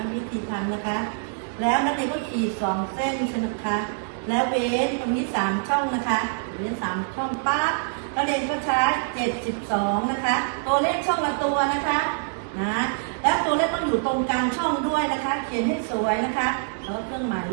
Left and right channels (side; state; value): left; silent; 62 dB below the other